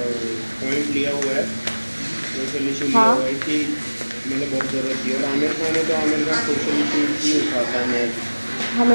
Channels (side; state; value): both; inverted; correlation -1.00